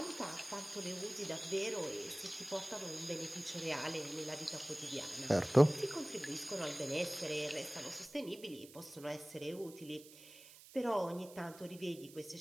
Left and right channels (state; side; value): noise; right; hiss, 19 dB below the sound